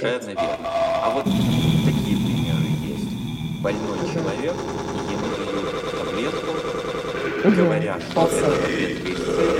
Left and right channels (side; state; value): both; identical; correlation 1.00